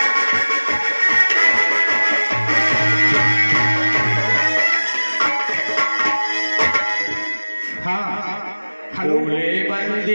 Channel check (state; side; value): inverted; both; correlation -1.00